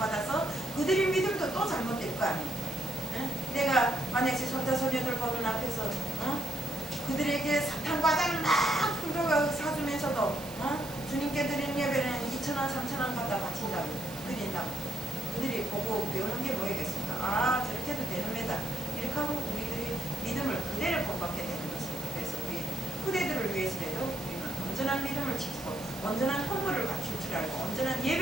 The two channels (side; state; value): right; noise; hiss, 15 dB below the sound